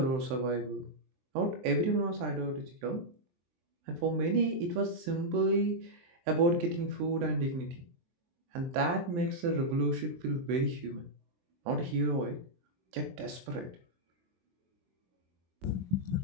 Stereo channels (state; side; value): late; left; 23 ms